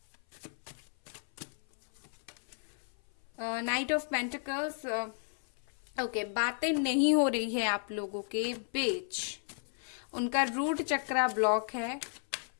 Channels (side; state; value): right; silent; 55 dB below the other